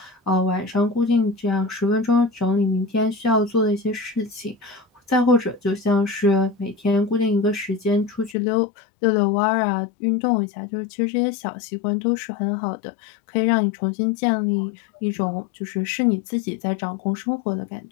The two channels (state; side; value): drops out; right; at 8.3 s